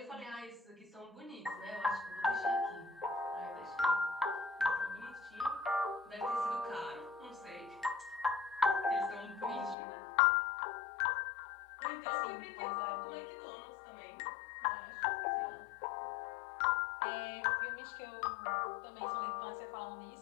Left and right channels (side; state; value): right; drops out; at 9.8 s